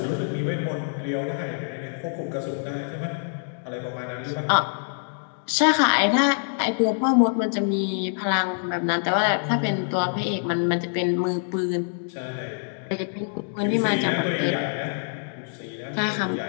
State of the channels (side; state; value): right; silent; digital silence